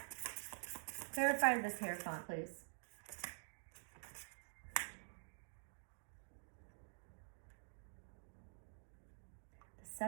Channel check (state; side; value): silent; left; digital silence